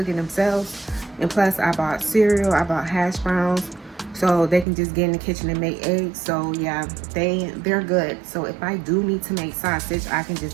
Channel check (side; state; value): left; drops out; at 4.7 s